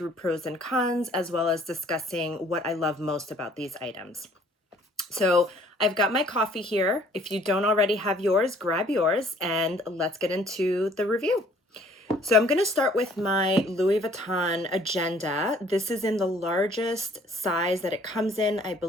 pros and cons, as well as discussing what I love most about these items. So I've got my coffee here. If you don't already have yours, grab yours and let's get into the review. So I'm going to start with my Louis Vuitton agenda. This is in the largest size that it comes in. I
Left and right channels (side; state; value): both; normal; correlation 0.57